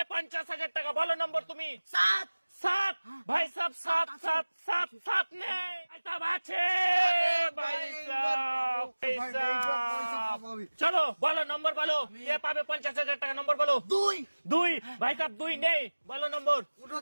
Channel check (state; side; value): inverted; both; correlation -1.00